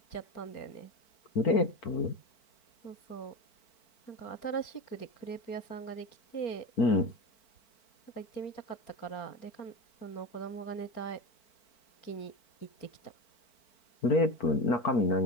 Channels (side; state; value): right; late; 4.5 ms